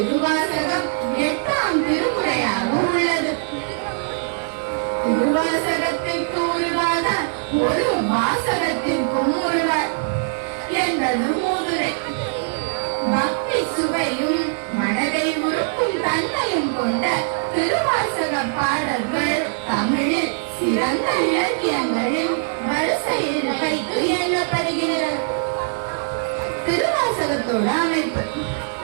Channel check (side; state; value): left; silent; digital silence